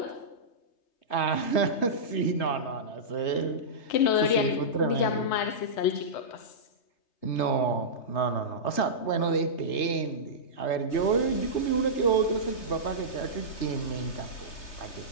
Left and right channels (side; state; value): right; late; 3.3 ms